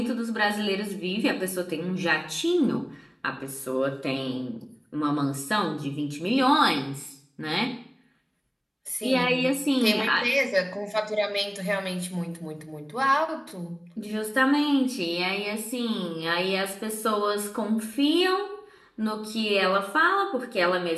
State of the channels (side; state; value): both; identical; correlation 1.00